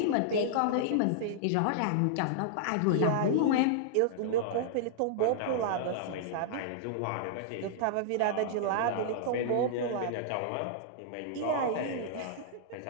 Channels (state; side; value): different; both; correlation -0.02